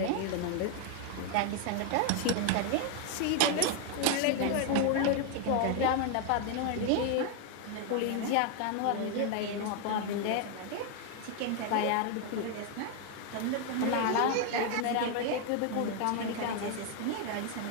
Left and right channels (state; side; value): different; both; correlation 0.01